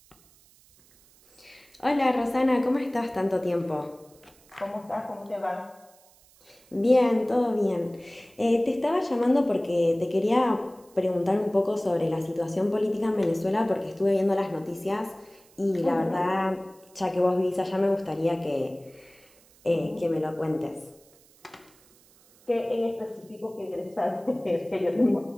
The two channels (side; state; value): right; noise; hiss, 29 dB below the sound